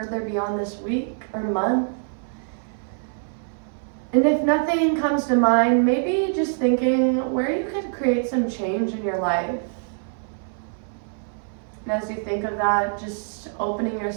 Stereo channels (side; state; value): left; silent; 59 dB below the other